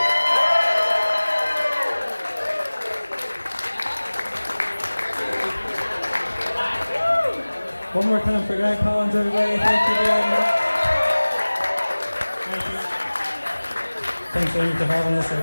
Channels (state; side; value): inverted; both; correlation -1.00